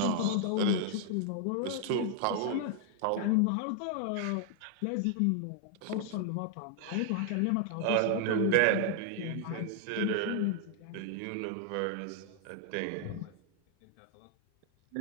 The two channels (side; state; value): both; different; correlation 0.00